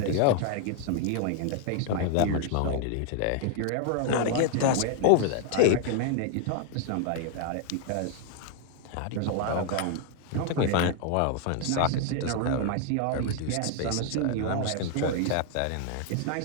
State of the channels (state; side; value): different; both; correlation 0.00